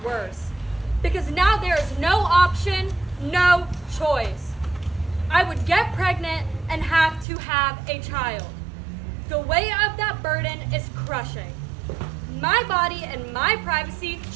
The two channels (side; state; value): left; drops out; at 7.2 s